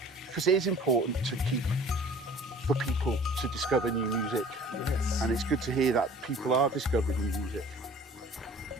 because it is important to keep for people to discover new music. Yes. And it's good to hear that people are discovering new music.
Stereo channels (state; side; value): normal; both; correlation 0.48